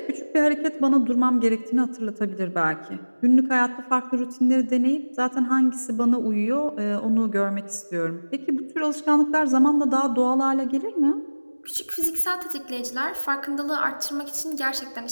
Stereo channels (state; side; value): inverted; both; correlation -1.00